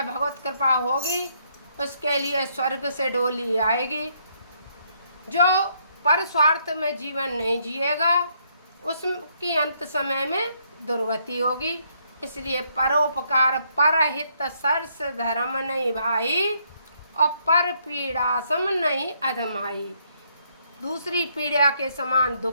भगवत कृपा होगी उसके लिए स्वर्ग से डोली आएगी। जो पर स्वार्थ में जीवन नहीं जिएगा उसकी अंत समय में दुर्गति होगी। इसलिए परोपकार परहित सरस धर्म नहीं भाई, और पर पीड़ा सम नहीं अधमाई। दूसरी पीड़ा के समान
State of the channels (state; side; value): inverted; both; correlation -0.71